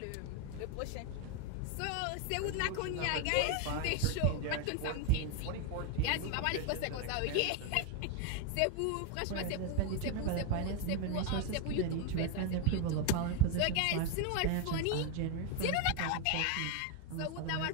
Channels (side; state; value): both; different; correlation 0.01